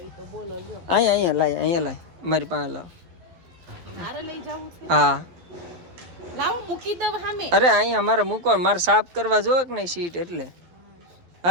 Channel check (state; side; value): late; left; 11 ms